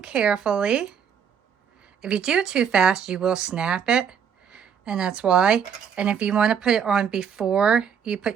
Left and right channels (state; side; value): quieter; left; 7.5 dB